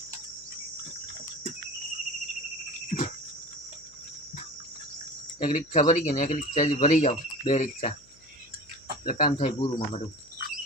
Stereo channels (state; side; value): noise; left; hum, 29 dB below the sound